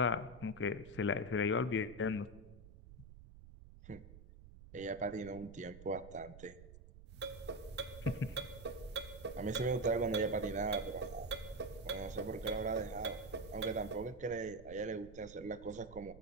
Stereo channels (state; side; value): noise; right; rumble, 17 dB below the sound